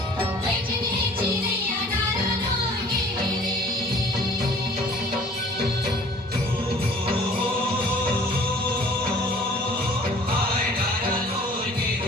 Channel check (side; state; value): both; normal; correlation 0.51